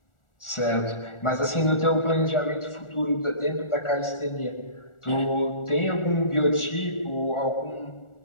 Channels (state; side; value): late; right; 1.4 ms